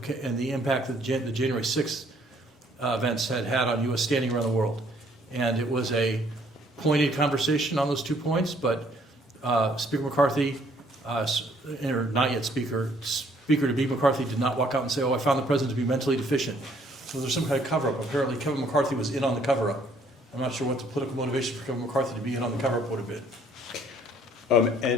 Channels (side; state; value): both; normal; correlation 0.63